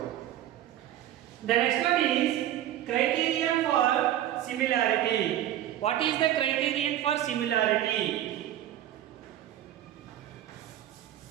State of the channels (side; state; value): left; quieter; 12.3 dB